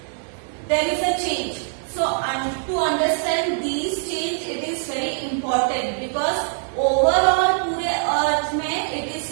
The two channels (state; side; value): silent; left; digital silence